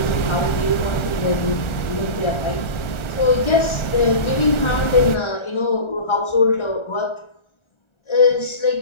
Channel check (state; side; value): late; right; 1.4 ms